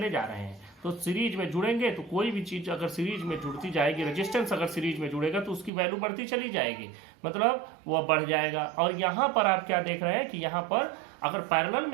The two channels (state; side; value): drops out; left; at 5.7 s